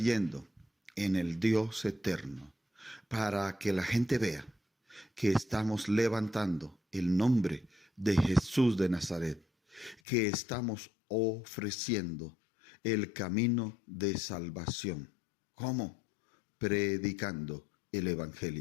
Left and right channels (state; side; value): drops out; right; at 10.0 s